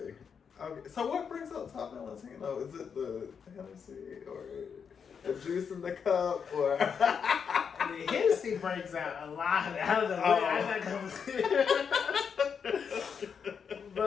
So what brings up Valentino? Is it the Hennessy or the juice in the cup, or? The Hennessy brings out a lot. I don't know. I'm not gonna.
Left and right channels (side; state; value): right; quieter; 6.7 dB